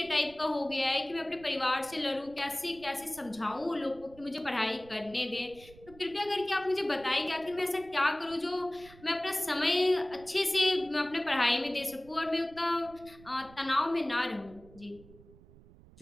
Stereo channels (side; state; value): right; noise; rumble, 22 dB below the sound